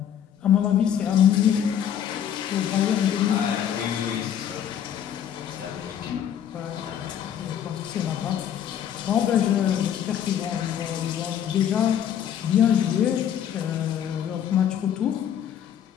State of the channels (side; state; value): right; quieter; 9.5 dB